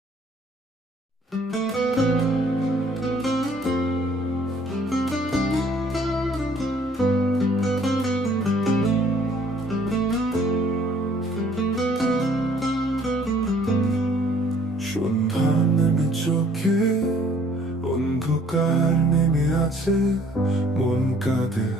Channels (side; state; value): both; normal; correlation 0.59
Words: সন্ধ্যা নেমে চোখে অন্ধকার নেমে আছে, মন কাঁদে